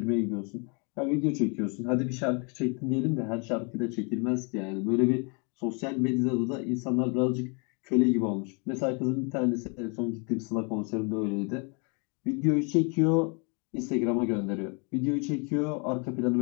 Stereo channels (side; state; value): right; quieter; 34.6 dB